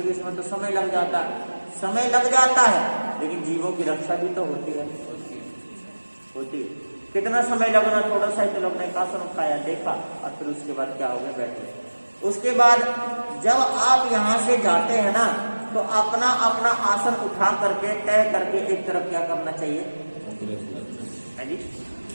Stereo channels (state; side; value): inverted; both; correlation -1.00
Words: इसमें तो समय लग जाता है। समय लग जाता है, लेकिन जीवों की रक्षा भी तो होती है। कितना समय लगना, थोड़ा सा ही तो लगना, एक आसन उठाया, देखा, और फिर उसके बाद क्या हो गया, बैठे। उसके बाद जब आप यहाँ से जाते हैं ना, तो अपना अपना आसन उठा करके तय करके एक तरफ क्या करना चाहिए, है जी,